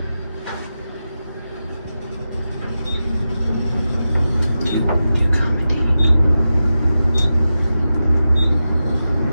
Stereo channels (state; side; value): inverted; both; correlation -0.92